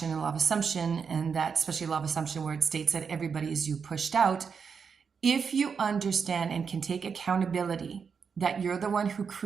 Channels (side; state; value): left; quieter; 6.1 dB